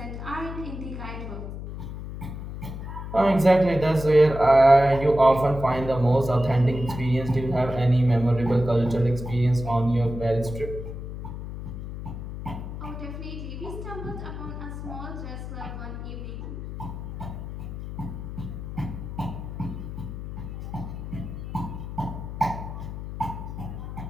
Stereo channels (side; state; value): left; noise; hum, 8 dB below the sound